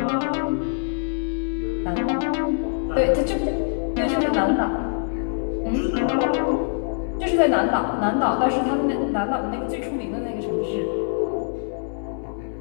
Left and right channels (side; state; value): right; silent; digital silence